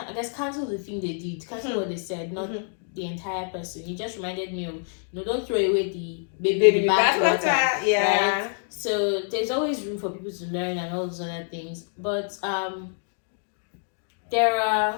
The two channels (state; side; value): silent; right; 59 dB below the other